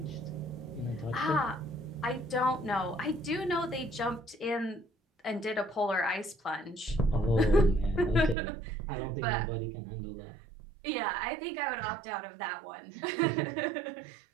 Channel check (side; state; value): left; drops out; at 8.3 s